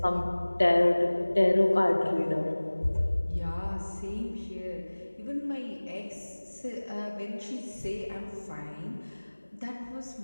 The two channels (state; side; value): inverted; both; correlation -1.00